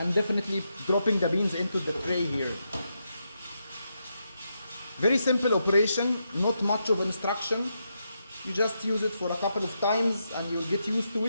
definitely dropping the beans into the tray here. Very simple operation, not much of instruction. You just use it for a couple of times and you'll get used to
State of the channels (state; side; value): inverted; both; correlation -0.83